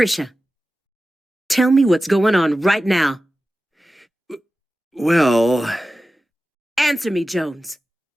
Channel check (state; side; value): normal; both; correlation 0.94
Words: Tell me what's going on right now. Well, Answer me, Jones.